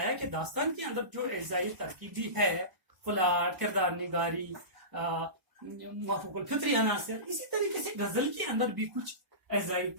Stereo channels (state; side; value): late; left; 1.0 ms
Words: کہ داستان کے اندر جو اعزائی ترکیبی ہے، پلاٹ، کردار نگاری، موافق الفطری عناصر، اسی طریقے سے غزل کے اندر بھی کچھ اعزائی